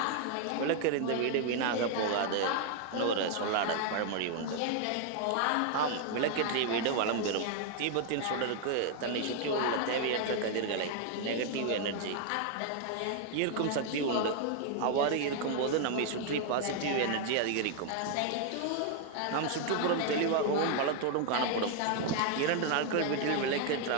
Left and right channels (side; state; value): both; different; correlation 0.00